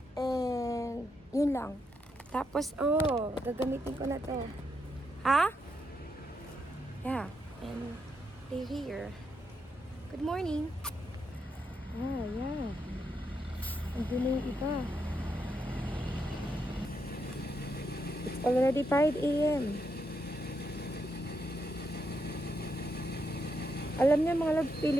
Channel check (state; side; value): normal; both; correlation 0.81